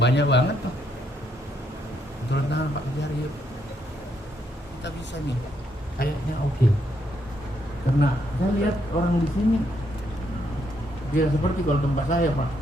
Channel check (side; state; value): both; normal; correlation 0.75